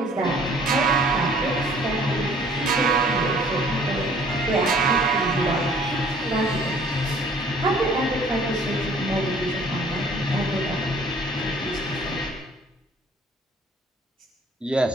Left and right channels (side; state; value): both; normal; correlation 0.55